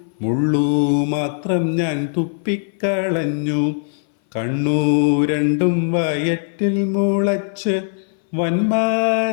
മുള്ളു മാത്രം ഞാൻ തുപ്പിക്കളഞ്ഞു. കണ്ണു രണ്ടും വയറ്റിൽ മുളച്ച്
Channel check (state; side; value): silent; right; 61 dB below the other